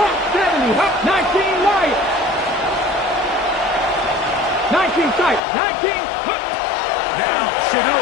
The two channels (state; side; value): drops out; right; at 5.4 s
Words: 70. Hop 19 Lions. 19 tight. 19. Hop. Now,